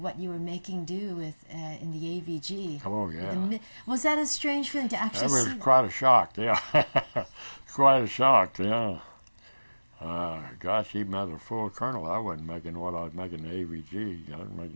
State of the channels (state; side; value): inverted; both; correlation -1.00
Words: you were making do with in the AVG? Oh, yeah. Was that a strange feeling to actually see? That was quite a shock, yeah. Quite a shock, yeah. Gosh, even as a full colonel, I wasn't making what I was making the AVG. I was